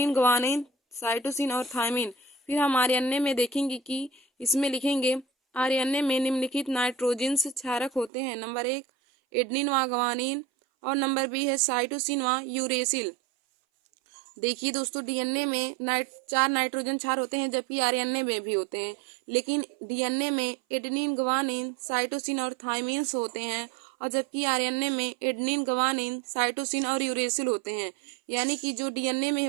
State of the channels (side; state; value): left; drops out; at 8.1 s